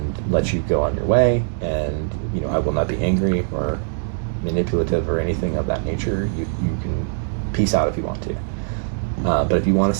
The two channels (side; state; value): left; silent; 61 dB below the other